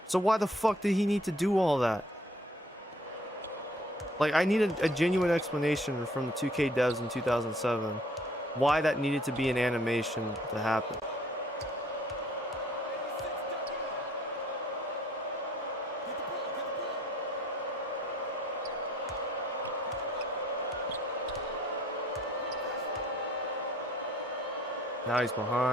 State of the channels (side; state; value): both; normal; correlation 0.60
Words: So why the fuck did he need to do all that? Like, I needed a genuine explanation from the 2K devs in 2007 why that needed to be an animation to happen. Now he's